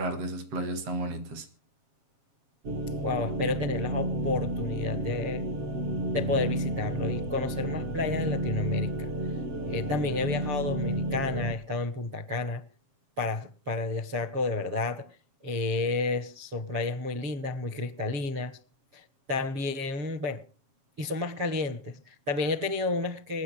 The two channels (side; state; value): left; late; 7.4 ms